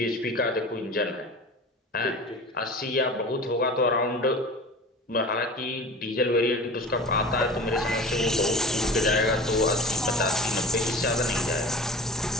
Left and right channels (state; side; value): normal; both; correlation 0.36